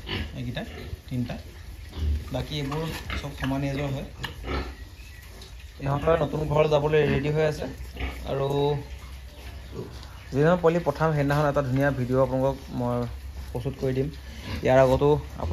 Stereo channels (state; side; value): identical; both; correlation 1.00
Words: এইকেইটা তিনিটা বাকী এইবোৰ চব সমান এজৰ হয় ইহঁতৰ নতুন ঘৰ যাবলৈ ৰেডি হৈ আছে আৰু যিদিনা পোৱালি পঠাম সেইদিনাখন এটা ধুনীয়া ভিডিঅ' আপোনালোকক মই প্ৰস্তুত কৰি দিম ইয়াৰ আগতো